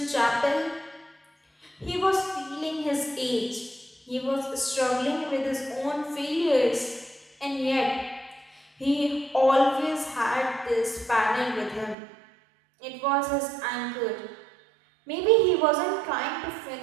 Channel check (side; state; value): left; drops out; at 12.0 s